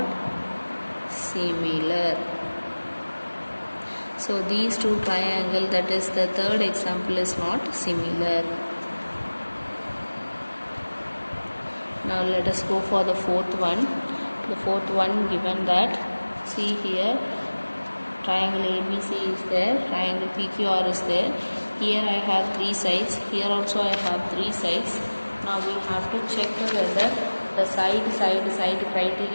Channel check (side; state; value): both; inverted; correlation -1.00